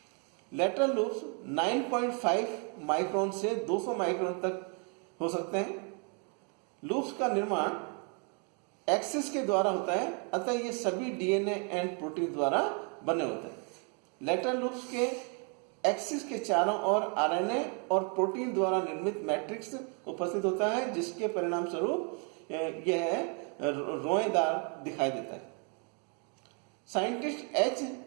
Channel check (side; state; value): left; quieter; 37.9 dB